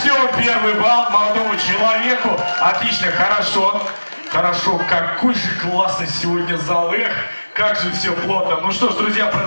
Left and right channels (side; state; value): both; inverted; correlation -1.00